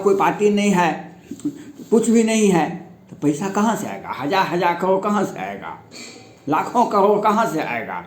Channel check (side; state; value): both; identical; correlation 1.00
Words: पार्टी नहीं है, कुछ भी नहीं है, तो पैसा कहाँ से आएगा? 1000 करोड़ कहाँ से आएगा? लाखों करोड़ कहाँ से आएगा?